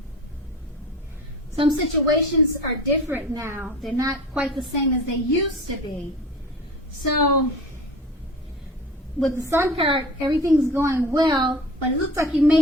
some situations are different now. They're not quite the same as they used to be. So, with the Sun card, everything's going well, but it looks like you may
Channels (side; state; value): both; normal; correlation 0.37